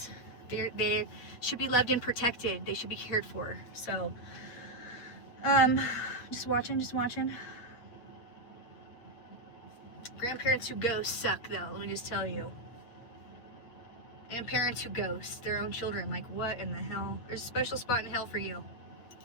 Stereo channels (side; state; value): right; late; 8.6 ms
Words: They should be loved and protected. They should be cared for. So just watching. Grandparents who ghost suck, though, let me just tell you. And parents who ghost their own children. Like, what in the hell? There's a special spot in hell for you.